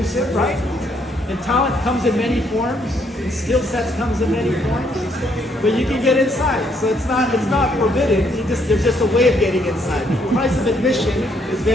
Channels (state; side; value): normal; both; correlation 0.70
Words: right? And talent comes in many forms, and skill sets comes in many forms. But you can get inside, so it's not forbidden. There's just a way of getting inside. The price of admission is